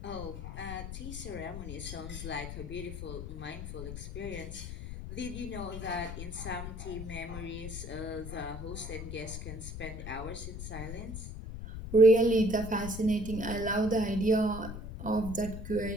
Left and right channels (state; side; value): noise; left; rumble, 8 dB below the sound